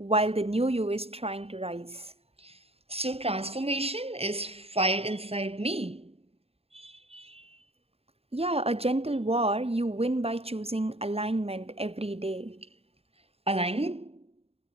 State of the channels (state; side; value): late; left; 0.29 ms